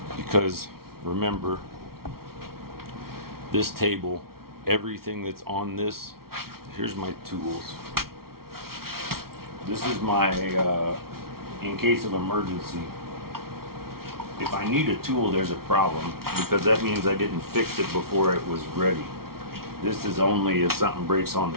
because remember, this table, everything that's on this, here's my tools. This is my, in case of emergency. If I need a tool, there's a problem, because that means I didn't fix it before it was ready. This is only if something breaks on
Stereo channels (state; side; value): late; left; 0.94 ms